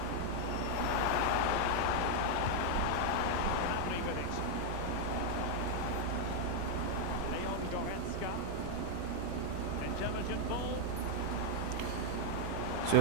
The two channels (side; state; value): both; different; correlation 0.00